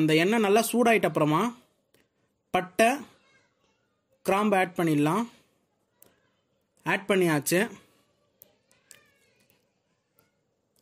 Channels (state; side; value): identical; both; correlation 1.00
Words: எண்ணெய் நல்லா சூடாயிட்ட அப்புறமா பட்டை கிராம்பு ஆட் பண்ணிடலாம். ஆட் பண்ணியாச்சு.